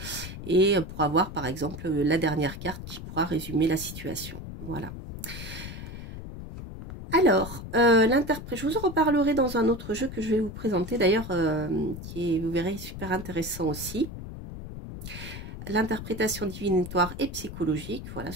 et pour avoir, par exemple, la dernière carte qui pourra résumer la situation. Voilà. Alors, je vous en reparlerai dans un autre jeu que je vais vous présenter d'ailleurs, qui est, vous verrez, super intéressant aussi. L'interprétation divinatoire et psychologique, voilà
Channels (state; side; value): noise; left; rumble, 10 dB below the sound